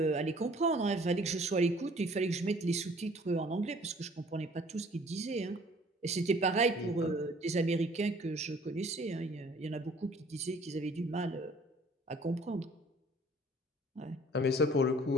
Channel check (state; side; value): normal; both; correlation 0.54